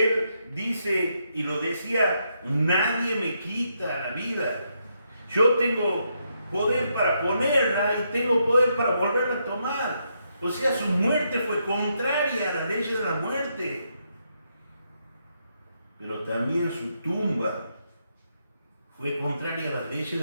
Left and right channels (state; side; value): inverted; both; correlation -0.79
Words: dice, y lo decía, nadie me quita la vida. Yo tengo poder para ponerla y tengo poder para volverla a tomar. O sea, su muerte fue contraria a las leyes de la muerte. Pero también su tumba fue contraria a las leyes